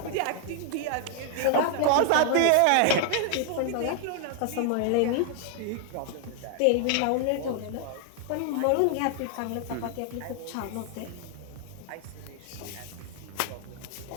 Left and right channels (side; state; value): both; different; correlation 0.00